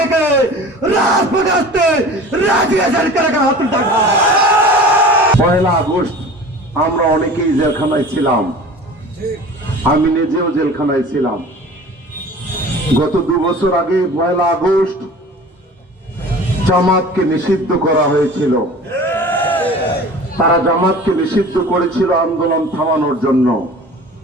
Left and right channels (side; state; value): both; normal; correlation 0.41